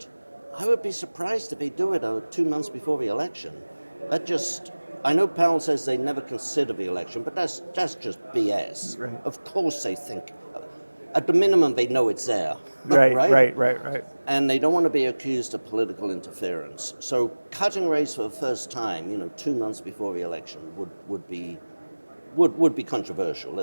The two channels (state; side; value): inverted; both; correlation -1.00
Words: I would be surprised if they do it 2 months before the election. I know Powell says they never consider the election, but that's just BS. Right. Of course they think, at the minimum they know it's there, Right. And they don't want to be accused of political interference. So cutting rates for the first time, 2 months before the election would be would be controversial,